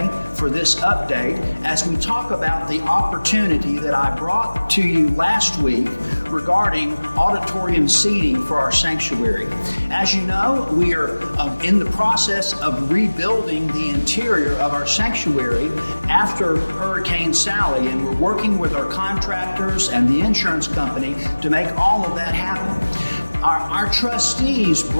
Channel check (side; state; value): both; inverted; correlation -1.00